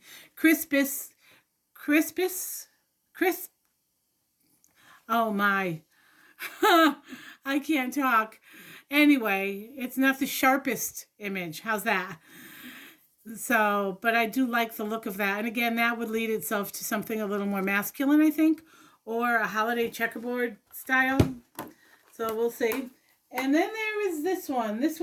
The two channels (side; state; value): both; identical; correlation 1.00